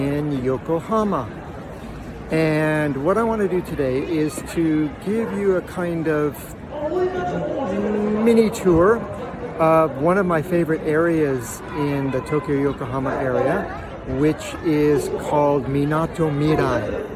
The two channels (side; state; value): both; identical; correlation 1.00